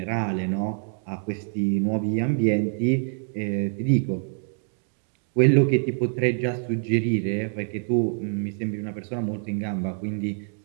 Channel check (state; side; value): silent; left; 55 dB below the other